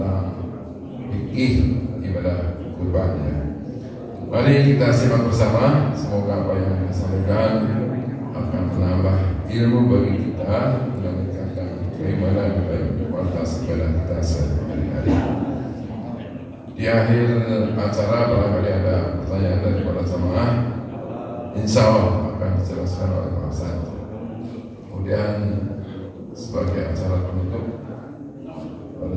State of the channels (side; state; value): both; identical; correlation 1.00